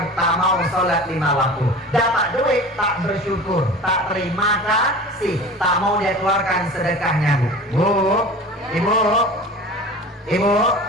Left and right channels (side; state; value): both; normal; correlation 0.37